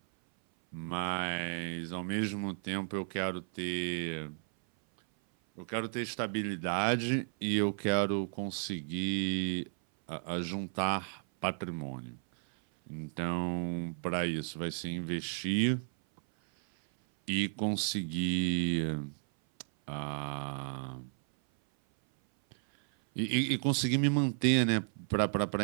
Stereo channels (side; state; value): left; silent; 55 dB below the other